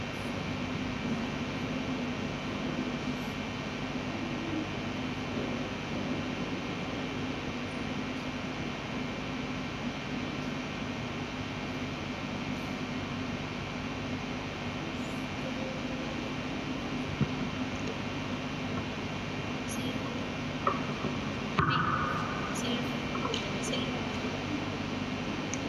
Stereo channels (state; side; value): identical; both; correlation 1.00